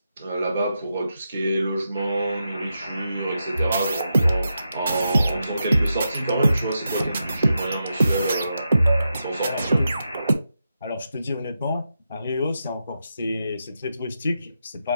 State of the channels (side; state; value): both; inverted; correlation -0.86